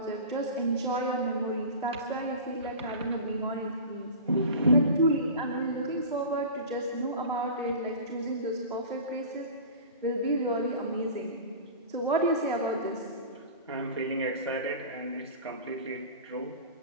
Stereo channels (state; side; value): inverted; both; correlation -0.35